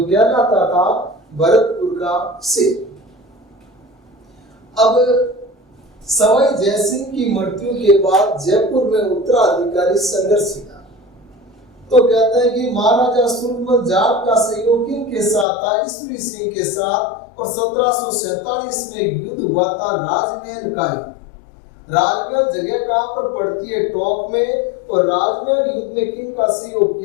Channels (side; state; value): right; drops out; at 15.5 s